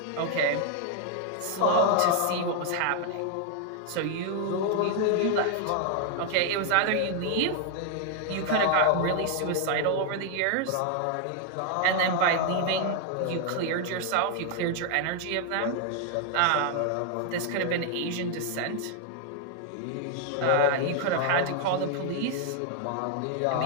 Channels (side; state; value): both; different; correlation 0.00